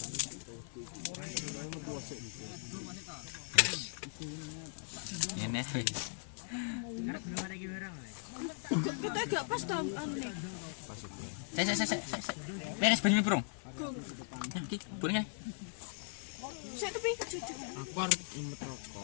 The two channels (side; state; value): right; silent; 52 dB below the other